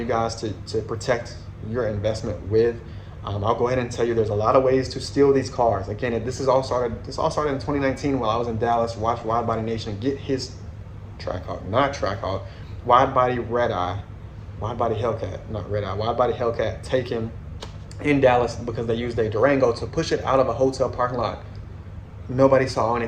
guys to protect your investment with. I'll go ahead and tell you there's a lot of ways to steal these cars. Again, this all started in 2019 while I was in Dallas. Watch Wide Body Nation get his Trackhawk, not Trackhawk, Wide Body Red Eye, Wide Body Hellcat, not Red Eye, Wide Body Hellcat, take him in Dallas because they used a Durango to push it out of a hotel parking lot. Nobody saw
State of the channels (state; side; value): identical; both; correlation 1.00